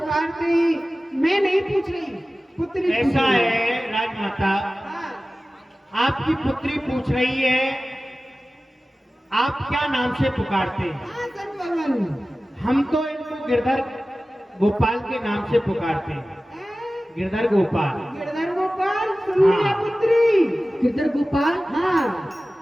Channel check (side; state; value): both; normal; correlation 0.96